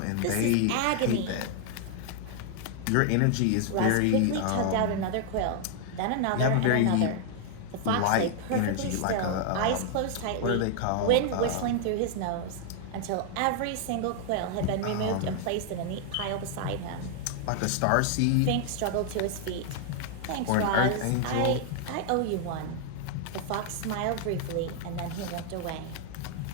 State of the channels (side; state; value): both; different; correlation 0.00